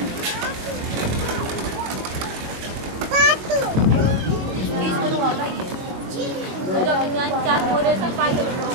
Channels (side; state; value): left; late; 22 ms